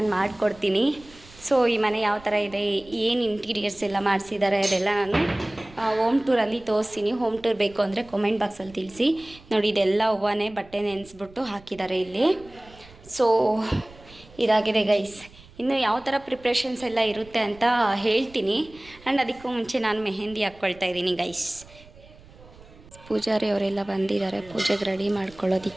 ಮಾಡಿಕೊಡ್ತೀನಿ. ಸೊ ಈ ಮನೆ ಯಾವ ಥರ ಇದೆ, ಏನು ಇಂಟೀರಿಯರ್ಸ್ ಎಲ್ಲ ಮಾಡಿಸಿದ್ದಾರೆ ಅದೆಲ್ಲ ನಾನು ಹೋಮ್ ಟೂರಲ್ಲಿ ತೋರಿಸ್ತೀನಿ. ಹೋಮ್ ಟೂರ್ ಬೇಕು ಅಂದರೆ ಕಾಮೆಂಟ್ ಬಾಕ್ಸಲ್ಲಿ ತಿಳಿಸಿ. ನೋಡಿ ಇದೆಲ್ಲ ಹೂವನೇ ಬಟ್ಟೆ ನೆನೆಸ್ಬಿಟ್ಟು ಹಾಕಿದ್ದಾರೆ ಇಲ್ಲಿ. ಸೊ ಇದಾಗಿದೆ ಗೈಸ್. ಇನ್ನು ಯಾವ ಥರ ಪ್ರಿಪ್ರೇಷನ್ಸ್ ಎಲ್ಲ ಇರುತ್ತೆ ಅಂತ ಹೇಳ್ತೀನಿ. ಆ್ಯಂಡ್ ಅದಕ್ಕೂ ಮುಂಚೆ ನಾನು ಮೆಹಂದಿ ಹಾಕ್ಕೊಳ್ತಾ ಇದ್ದೀನಿ ಗೈಸ್. ಪೂಜಾರಿ ಅವರೆಲ್ಲ ಬಂದಿದ್ದಾರೆ ಪೂಜೆಗೆ ರೆಡಿ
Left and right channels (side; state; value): right; noise; rumble, 23 dB below the sound